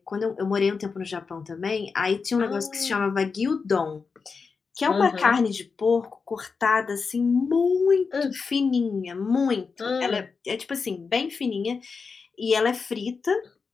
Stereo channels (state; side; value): quieter; right; 5.0 dB